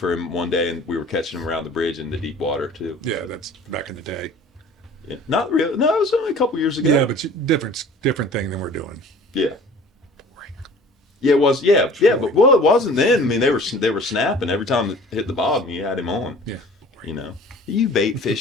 him one day, and we were catching him around the bridge in the deep water too. Yeah, that's back in the day. Yeah, not real. No, it was only a couple years ago. Yeah, but different thing than we're doing. Yeah. Yeah, it was. Yeah, but it wasn't then. I mean, they were snapping every time it hit the bottom. You had him on. Yeah. You know, you bait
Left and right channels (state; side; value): normal; both; correlation 0.47